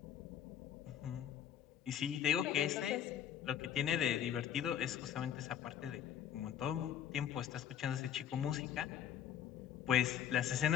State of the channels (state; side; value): quieter; right; 9.6 dB